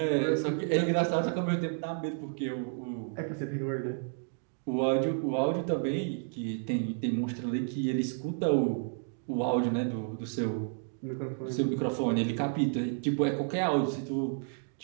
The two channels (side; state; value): left; silent; 57 dB below the other